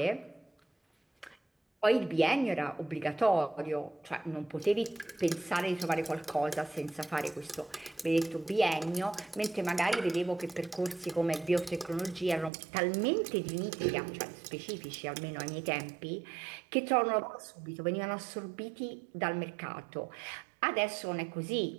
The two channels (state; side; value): drops out; left; at 12.5 s